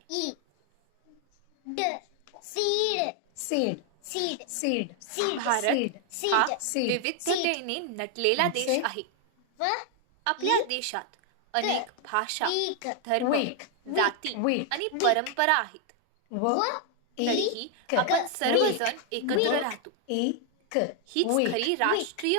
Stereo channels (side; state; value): both; different; correlation 0.00